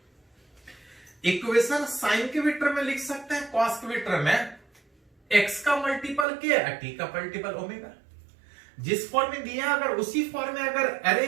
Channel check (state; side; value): drops out; left; at 6.2 s